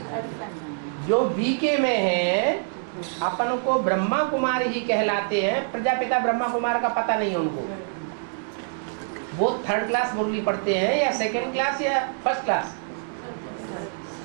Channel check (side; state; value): left; silent; digital silence